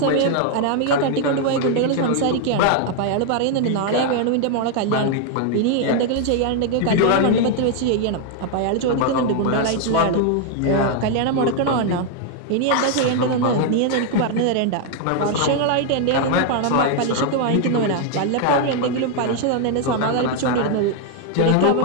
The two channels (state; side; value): different; both; correlation 0.00